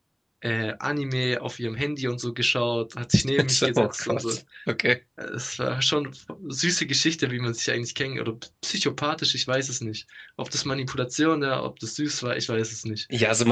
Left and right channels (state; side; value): identical; both; correlation 1.00